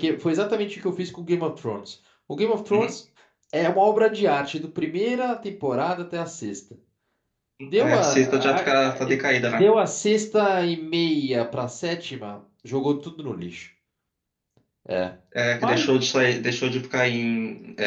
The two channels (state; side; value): identical; both; correlation 1.00